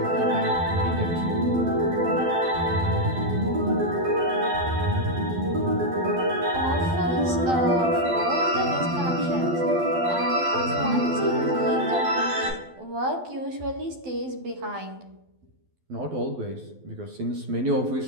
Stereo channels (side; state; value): left; late; 12 ms